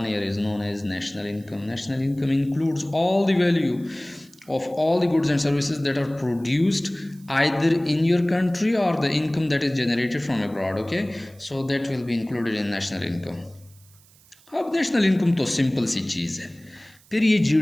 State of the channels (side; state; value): right; noise; hiss, 28 dB below the sound